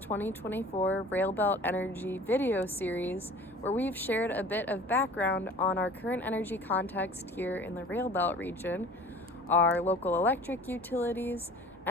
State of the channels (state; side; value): normal; both; correlation 0.44